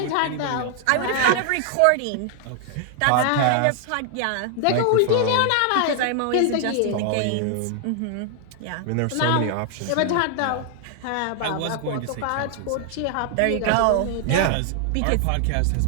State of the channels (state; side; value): different; both; correlation 0.00